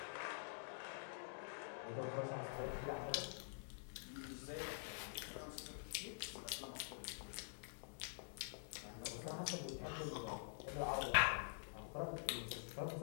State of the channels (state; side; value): silent; right; digital silence